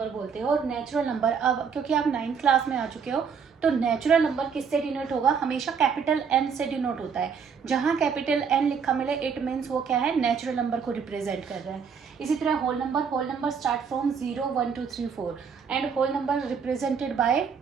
बोलते हैं। और नेचुरल नंबर अब क्योंकि आप 9th क्लास में आ चुके हो तो नेचुरल नंबर किससे डिनोट होगा, हमेशा कैपिटल एन से डिनोट होता है। जहां कैपिटल एन लिखा मिले इट मीन्स वो क्या है, नेचुरल नंबर को रिप्रेजेंट कर रहा है। इसी तरह whole number start from 0 1 2 3 4 and whole number represented by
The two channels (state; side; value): quieter; left; 6.3 dB